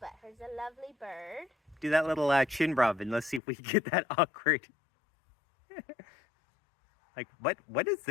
her's a lovely bird. Do that little chin rub and let's see if we can get that awkward. Like, what is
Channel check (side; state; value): right; drops out; at 3.4 s